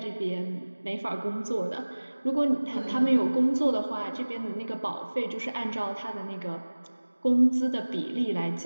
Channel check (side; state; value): both; inverted; correlation -1.00